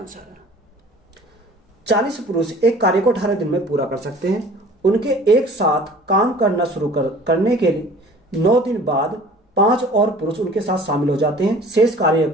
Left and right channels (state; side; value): normal; both; correlation 0.48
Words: है। 40 पुरुष एक कार्य को 18 दिन में पूरा कर सकते हैं। उनके एक साथ काम करना शुरू करने के लिए 9 दिन बाद 5 और पुरुष उनके साथ शामिल हो जाते हैं। शेष कार्य